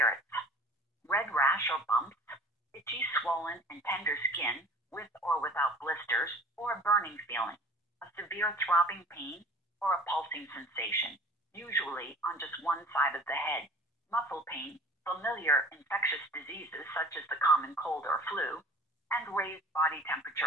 red rash or bumps, itchy, swollen, and tender skin with or without blisters, or a burning feeling, a severe throbbing pain, or a pulsing sensation, usually on just one side of the head, muscle pain, familiar infectious diseases such as the common cold or flu, and raised body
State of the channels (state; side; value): normal; both; correlation 0.45